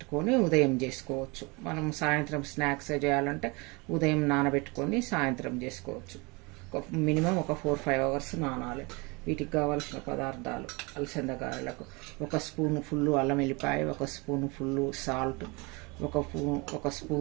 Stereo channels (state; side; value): quieter; left; 27.5 dB